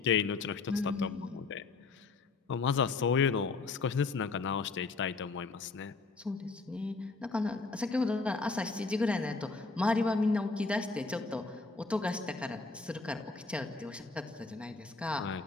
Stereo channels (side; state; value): right; quieter; 4.0 dB